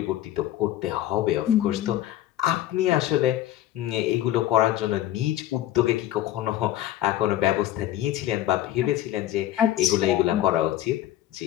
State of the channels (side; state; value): right; quieter; 13.4 dB